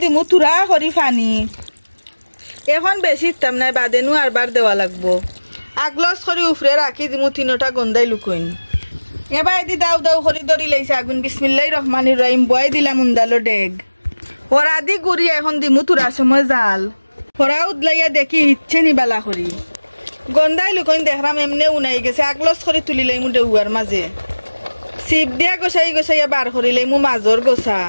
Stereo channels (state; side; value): inverted; both; correlation -1.00